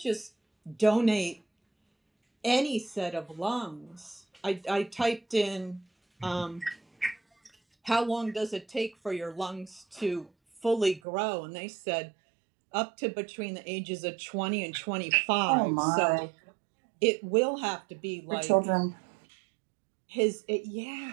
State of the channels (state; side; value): drops out; left; at 11.0 s